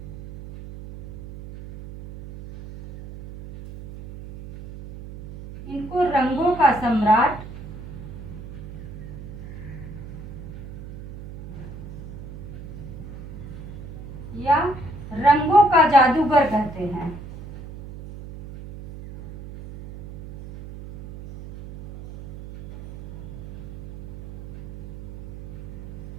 इनको रंगों का सम्राट या रंगों का जादूगर कहते हैं।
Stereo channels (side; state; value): right; noise; hum, 13 dB below the sound